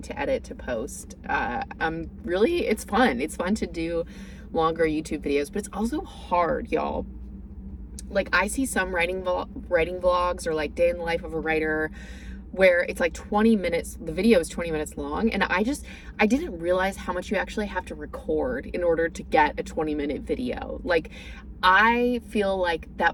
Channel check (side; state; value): both; identical; correlation 1.00